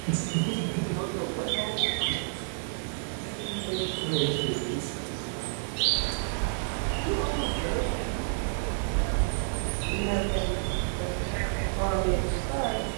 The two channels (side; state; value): left; silent; digital silence